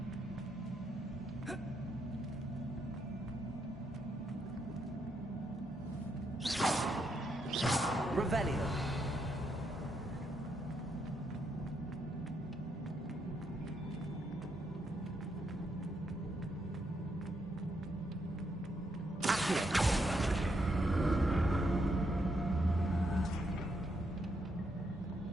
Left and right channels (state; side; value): normal; both; correlation 0.78